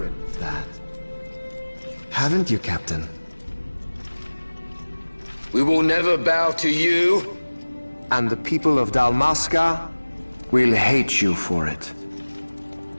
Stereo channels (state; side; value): inverted; both; correlation -1.00